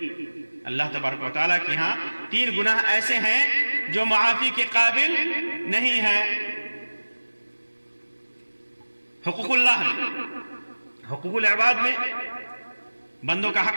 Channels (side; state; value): both; inverted; correlation -1.00